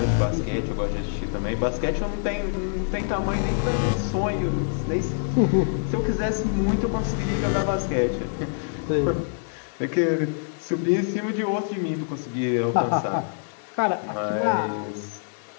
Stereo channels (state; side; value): silent; right; 62 dB below the other